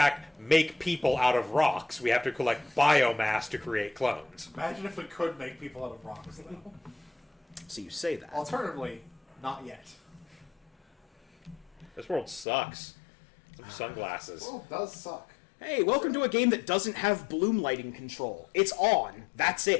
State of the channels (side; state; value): right; drops out; at 12.5 s